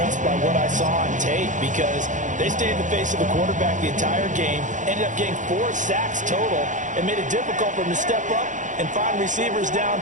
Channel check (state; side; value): late; left; 0.36 ms